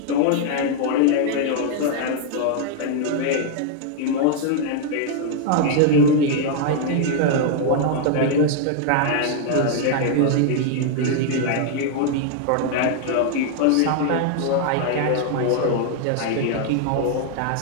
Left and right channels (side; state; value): both; different; correlation 0.00